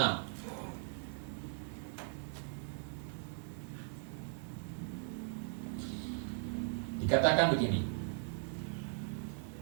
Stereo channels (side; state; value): left; silent; 52 dB below the other